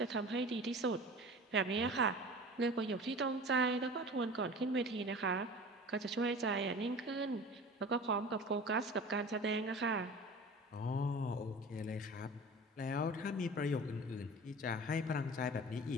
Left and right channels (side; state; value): both; normal; correlation 0.38